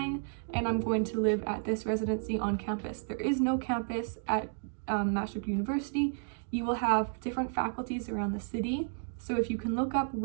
and I'm going to live at this residency on campus. There is no campus at Maastricht University. You will have different faculties around the city. So if you can look up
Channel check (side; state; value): left; silent; digital silence